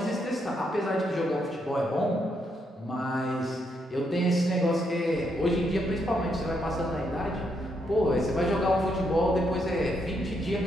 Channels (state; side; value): normal; both; correlation 0.77